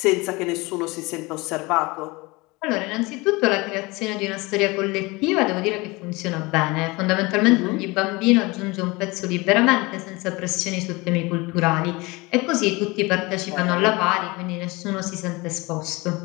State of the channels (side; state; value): right; quieter; 24.0 dB